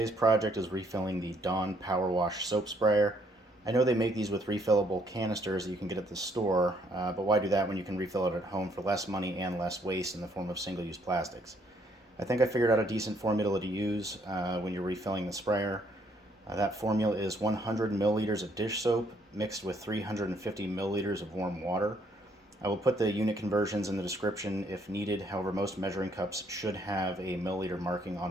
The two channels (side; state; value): both; normal; correlation 0.68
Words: project is refilling the Dawn PowerWash soap sprayer. I know they make these with refillable canisters that you can get at the store, but why do that when you can refill it at home for less money and less waste in the form of single-use plastics? I think I figured out a decent formula to use when you're refilling the sprayer. That formula is 100 milliliters of dish soap mixed with 350 milliliters of warm water. I will put the unit conversions in the description if needed. However, most measuring cups should have a milliliter marking